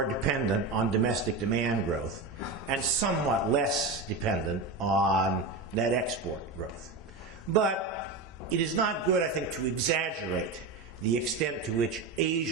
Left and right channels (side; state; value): left; quieter; 3.7 dB